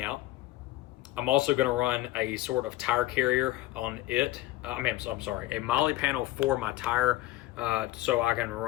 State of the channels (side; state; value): right; quieter; 16.6 dB